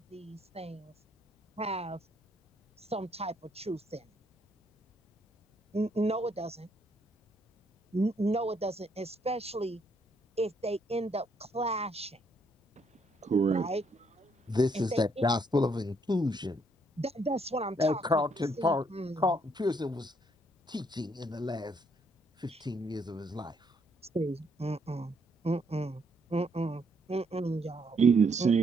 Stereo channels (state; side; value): normal; both; correlation 0.71